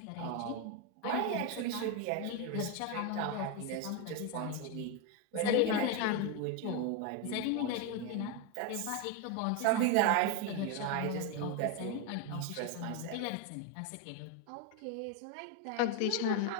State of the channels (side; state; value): both; different; correlation 0.02